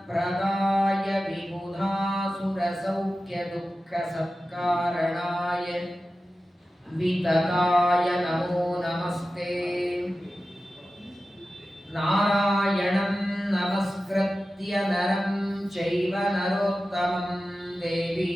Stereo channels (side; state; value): both; normal; correlation 0.94